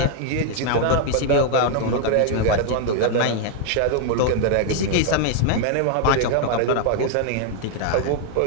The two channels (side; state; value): both; different; correlation 0.00